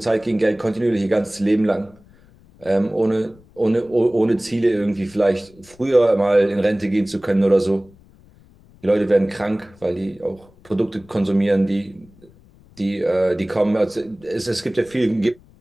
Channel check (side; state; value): left; noise; rumble, 27 dB below the sound